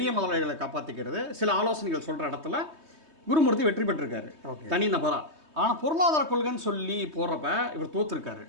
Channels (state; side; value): late; left; 3.2 ms